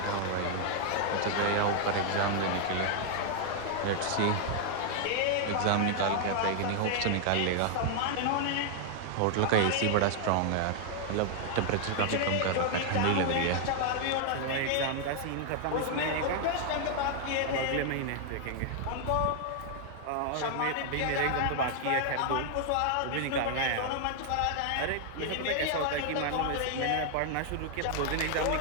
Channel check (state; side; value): different; both; correlation 0.00